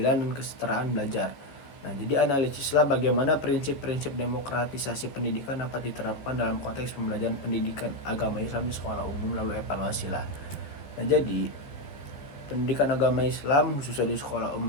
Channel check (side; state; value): right; late; 14 ms